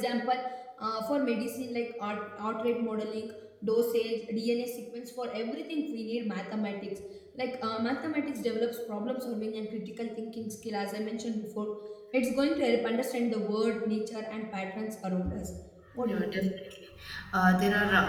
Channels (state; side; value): identical; both; correlation 1.00